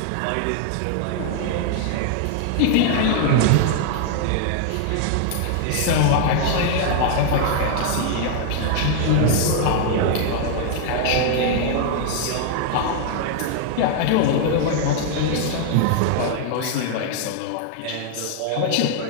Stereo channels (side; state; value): both; different; correlation 0.00